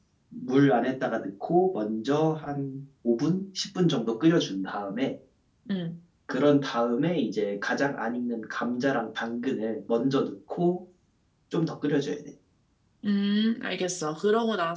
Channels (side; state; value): both; identical; correlation 1.00